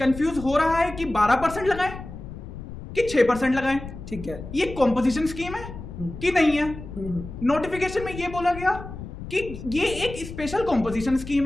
हो रहा है कि 12% लगाएं कि 6% लगाएं। ठीक है, ये कॉम्पोजिशन स्कीम है कि नहीं है। नोटिफिकेशन में ये बोला गया कि ये एक स्पेशल कॉम्पोजिशन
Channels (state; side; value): noise; left; rumble, 11 dB below the sound